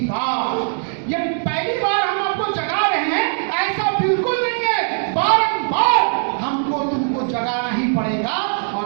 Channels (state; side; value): silent; left; digital silence